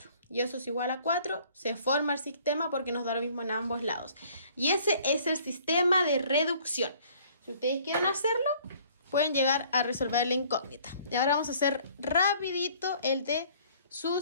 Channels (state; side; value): inverted; both; correlation -0.57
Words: Y eso es igual a 4. Se forma el sistema porque nos da lo mismo en ambos lados. Y ese es el sistema de reducción. Si ustedes quieren hacerlo, pueden llegar a resolver la incógnita. Y ahora vamos a hacer rapidito el de